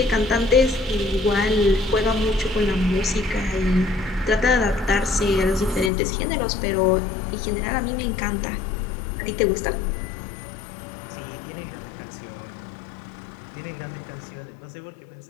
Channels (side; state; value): right; drops out; at 5.9 s